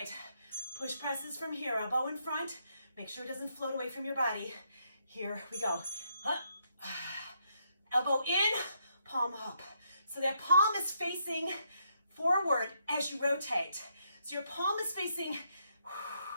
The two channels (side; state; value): both; inverted; correlation -0.76